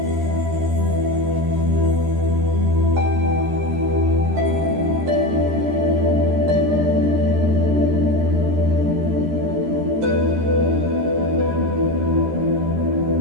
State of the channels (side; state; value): left; late; 13 ms